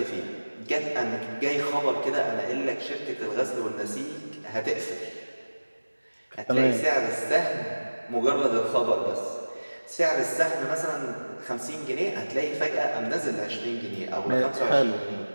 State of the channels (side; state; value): both; inverted; correlation -1.00